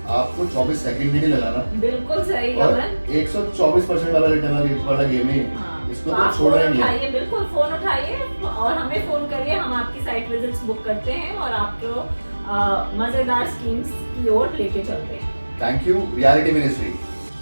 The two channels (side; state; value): both; inverted; correlation -1.00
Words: आपको 24 सेकंड भी नहीं लगाना। बिल्कुल सही और गमन। 124% वाला रिटर्न वाला गेम है। हाँ, इसको तो तो आप छोड़ना फोन ही नहीं है। उठाइए, बिल्कुल फोन उठाइए और हमें फोन करिए, हम आपकी साइट विजिट्स बुक करते हैं और आपको मजेदार स्कीम्स की ओर लेके चलते हैं। Thank you reality ministry.